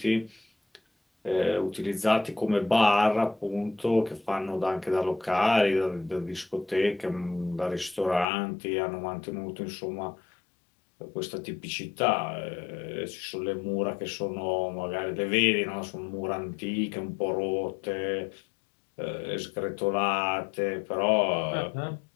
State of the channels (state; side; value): drops out; right; at 8.2 s